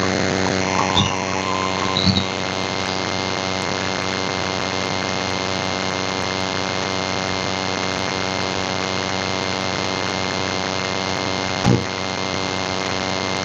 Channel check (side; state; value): both; identical; correlation 1.00